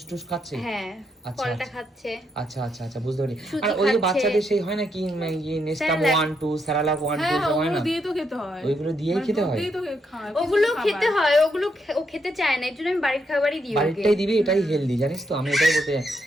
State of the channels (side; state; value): both; normal; correlation 0.78